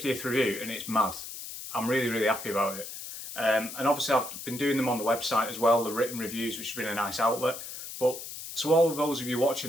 review and it's mad. I'm really, really happy about it. And obviously I've been doing them on the website as well, the written reviews, which has been a nice outlet. But to all of those of you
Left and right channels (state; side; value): noise; left; hiss, 10 dB below the sound